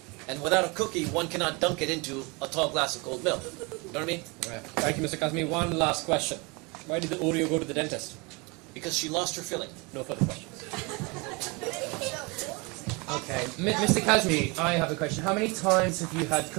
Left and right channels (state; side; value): quieter; left; 28.0 dB